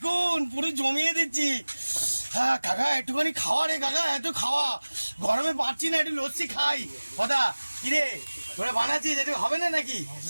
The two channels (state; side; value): inverted; both; correlation -1.00